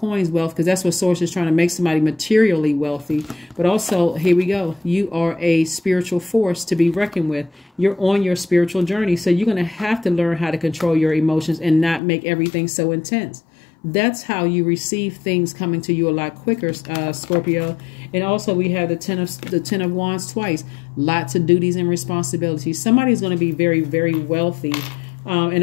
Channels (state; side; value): drops out; right; at 12.0 s